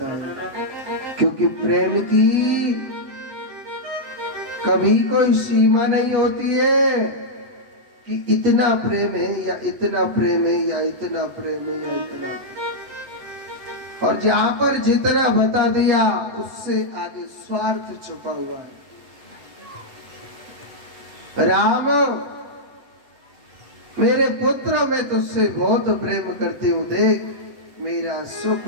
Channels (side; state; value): left; late; 8.1 ms